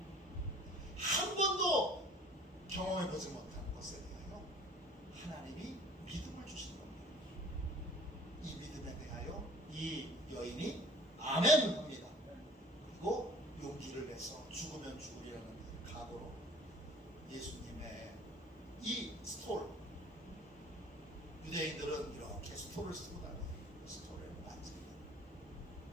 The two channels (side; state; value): both; normal; correlation 0.48